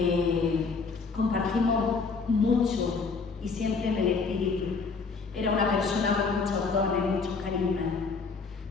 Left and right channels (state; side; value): quieter; right; 4.7 dB